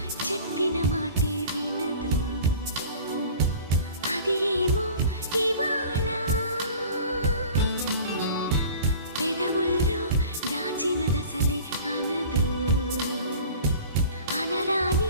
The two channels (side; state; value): both; inverted; correlation -0.43